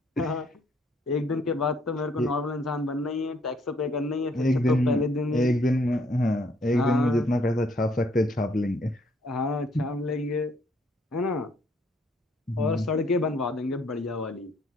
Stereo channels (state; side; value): normal; both; correlation 0.66